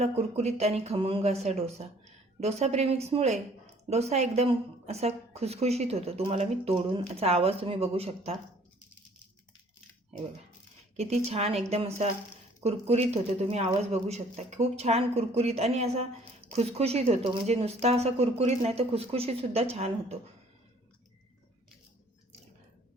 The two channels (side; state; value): both; normal; correlation 0.57